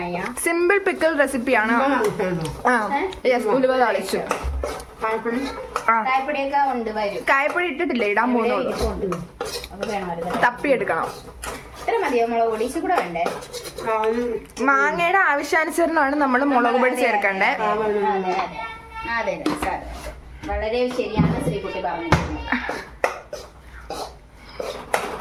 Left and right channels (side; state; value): both; identical; correlation 1.00